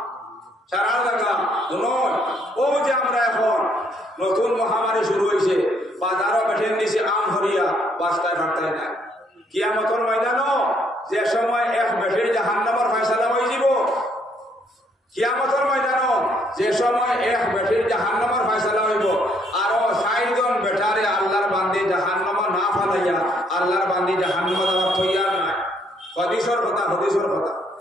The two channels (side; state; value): both; normal; correlation 0.69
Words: সারা জায়গা নয় ও যে আমরা এখন নতুন মহামারী শুরু হয়েছে বাজারও বেঠেন দিছে আম হরিয়া বাস্তায় ভাটতায় নাই কিয়ামতের ময়দানও যে সময় এক বেঠের জাহান্নামের ফয়সালা হয়ে যাব কিয়ামতের ময়দানও যে সময় এক বেঠের জাহান্নামের ফয়সালা হইব আর ৬০ জন বেটারে আল্লাহর বান্দি জাহান্নামে না ফালাইয়া আল্লাহর বান্দি জাহান্নামে যাওয়ার তৈয়ার নাই হদিসের কথা